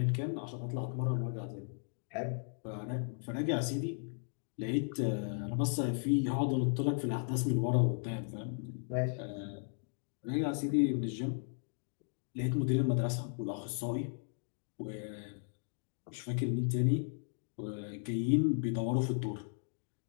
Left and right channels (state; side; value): silent; right; digital silence